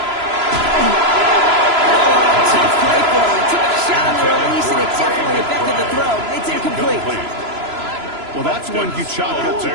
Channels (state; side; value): late; left; 3.0 ms